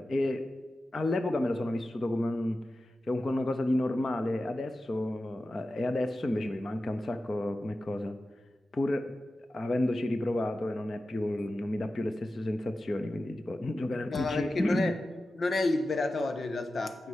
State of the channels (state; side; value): normal; both; correlation 0.94